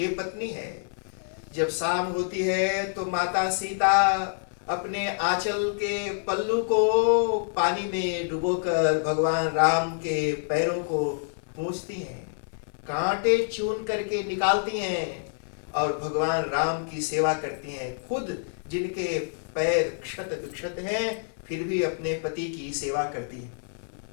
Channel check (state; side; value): silent; right; 60 dB below the other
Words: पत्नी है, जब शाम होती है तो माता सीता अपने आंचल के पल्लू को पानी में डुबोकर भगवान राम के पैरों को पोंछती हैं, कांटे चून करके निकालती हैं और भगवान राम की सेवा करती हैं। खुद जिनके पैर क्षत विक्षत हैं फिर भी अपने पति की सेवा करती हैं।